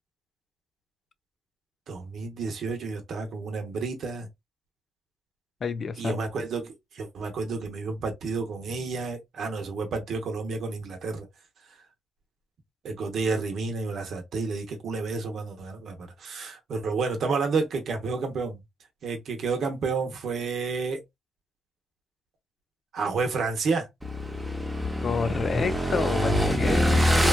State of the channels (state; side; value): normal; both; correlation 0.80